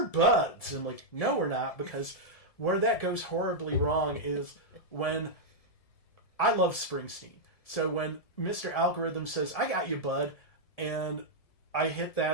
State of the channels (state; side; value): late; right; 1.7 ms